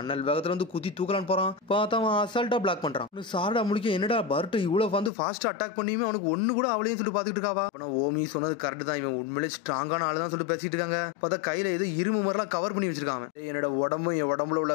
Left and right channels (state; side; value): drops out; right; at 5.1 s